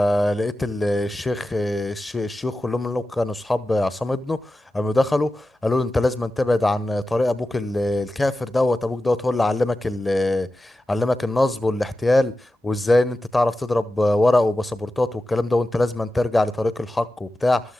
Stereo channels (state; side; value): normal; both; correlation 0.93